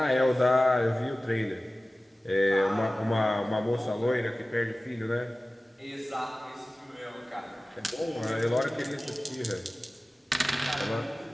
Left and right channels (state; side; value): normal; both; correlation 0.97